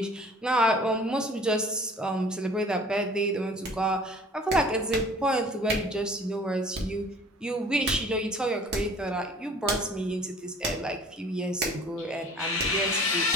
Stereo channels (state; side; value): normal; both; correlation 0.48